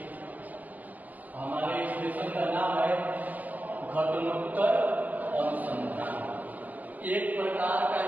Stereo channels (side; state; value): left; late; 0.081 ms